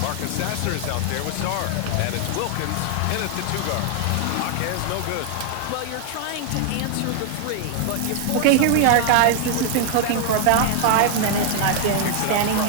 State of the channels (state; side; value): different; both; correlation 0.00